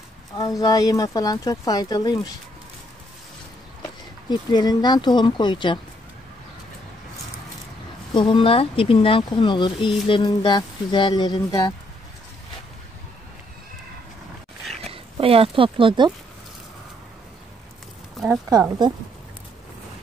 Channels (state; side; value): normal; both; correlation 0.70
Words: Alzheimer falan çok faydalıymış. Diplerinden tohum koyacağım. Tohumlar dibinden konulur. İyilerinden, güzellerinden. Bayağı topladım. Az kaldı.